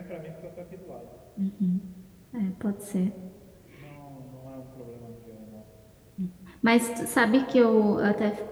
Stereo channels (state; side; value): identical; both; correlation 1.00